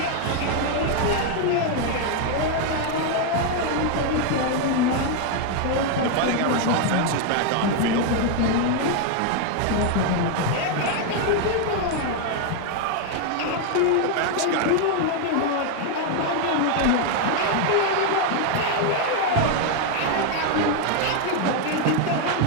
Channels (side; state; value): both; different; correlation 0.01